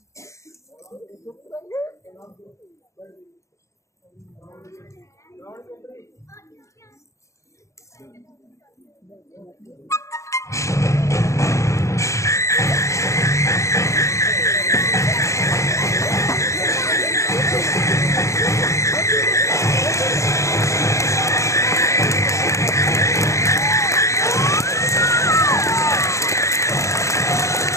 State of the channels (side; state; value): right; late; 0.15 ms